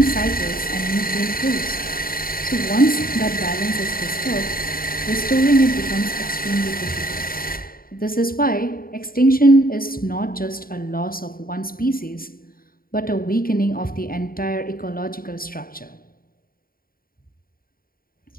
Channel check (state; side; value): late; right; 0.42 ms